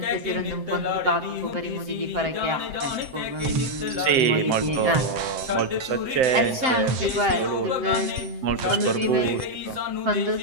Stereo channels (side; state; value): left; late; 7.8 ms